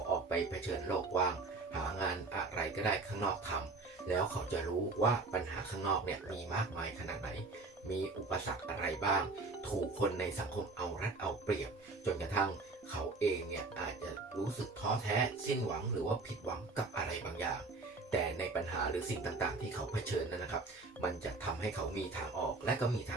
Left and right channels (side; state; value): left; quieter; 3.6 dB